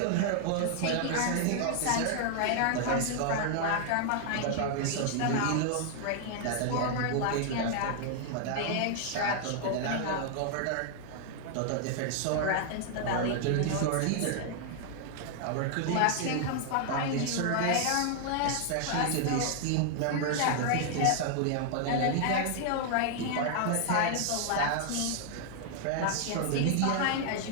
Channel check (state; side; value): different; both; correlation 0.00